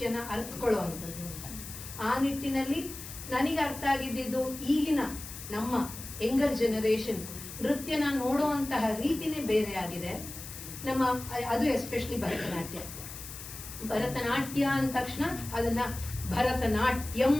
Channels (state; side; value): noise; left; hiss, 11 dB below the sound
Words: ಅರ್ಥಕೊಳ್ಳುವಂಥದ್ದು. ಆ ನಿಟ್ಟಿನಲ್ಲಿ ನನಗೆ ಅರ್ಥ ಆಗಿದ್ದು ಈಗಿನ ನಮ್ಮ ಯಂಗರ್ ಜನರೇಷನ್ ನೃತ್ಯನ ನೋಡುವಂತಹ ರೀತಿನೇ ಬೇರೆ ಆಗಿದೆ. ನಮ್ಮ ಅದು ಎಸ್ಪೆಷಲಿ ಭರತನಾಟ್ಯ ಅಂದ ತಕ್ಷಣ ಅದನ್ನ ಭರತನಾಟ್ಯಂ